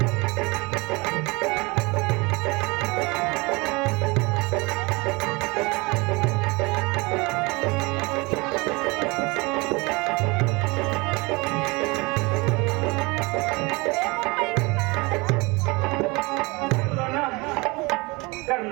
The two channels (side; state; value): left; quieter; 25.7 dB